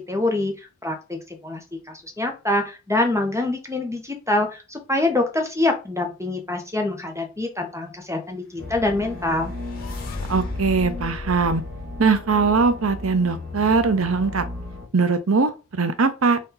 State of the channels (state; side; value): normal; both; correlation 0.42